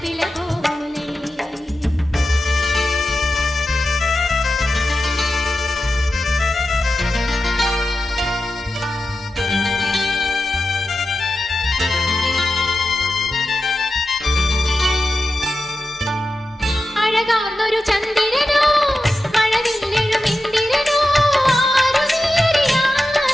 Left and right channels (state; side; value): normal; both; correlation 0.92